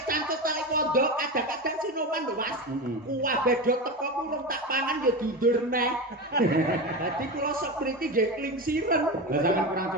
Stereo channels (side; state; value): both; normal; correlation 0.21